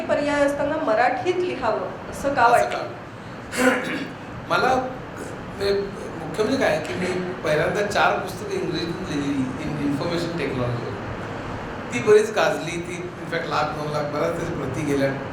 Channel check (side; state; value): both; identical; correlation 1.00